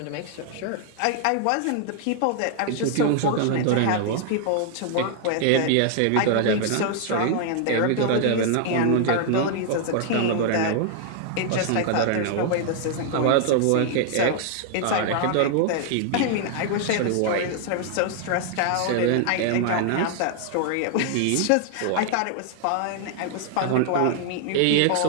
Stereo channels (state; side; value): different; both; correlation 0.00